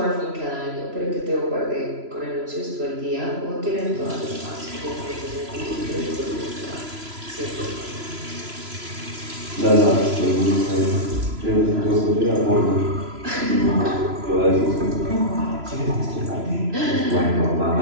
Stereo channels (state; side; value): late; left; 3.0 ms